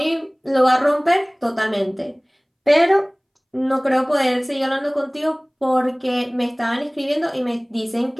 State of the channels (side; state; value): both; identical; correlation 1.00